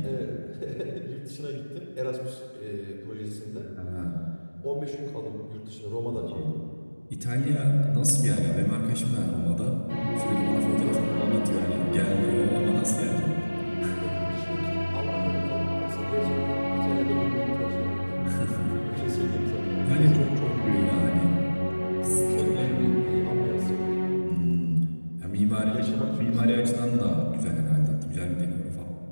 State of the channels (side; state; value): both; inverted; correlation -1.00